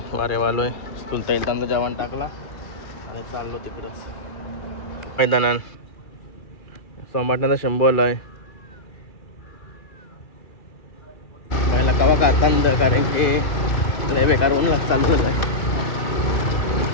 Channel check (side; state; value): right; late; 2.4 ms